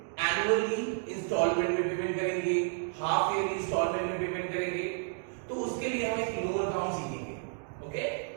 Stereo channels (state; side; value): silent; left; 57 dB below the other